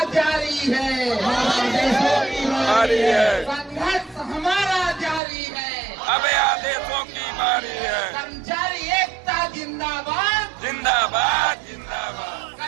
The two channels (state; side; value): drops out; left; at 5.2 s